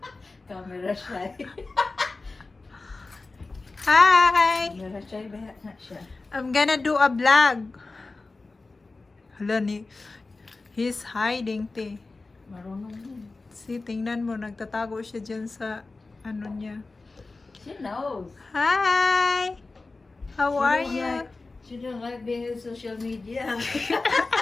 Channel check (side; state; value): right; quieter; 3.6 dB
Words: Camera shy. Hi. Camera shy ba na siya? I'm gonna do a vlog. Hala ni, he's hiding, te. Marunong yun. See, tingnan mo, nagtatago siya dyan sa ano niya. She knows. Hi. How are you? She don't like being in social media.